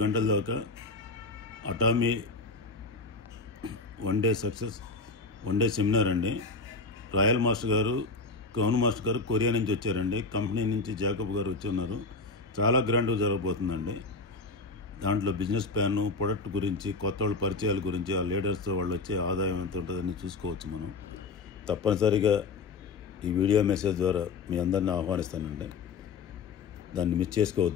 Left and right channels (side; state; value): right; quieter; 4.0 dB